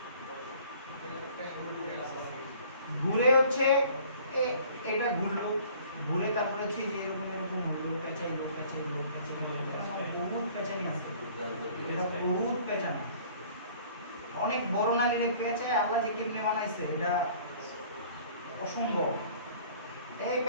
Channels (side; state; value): both; inverted; correlation -0.52